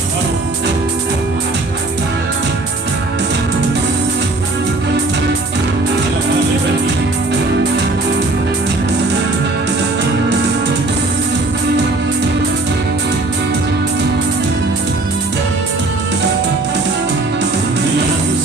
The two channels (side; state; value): left; quieter; 3.0 dB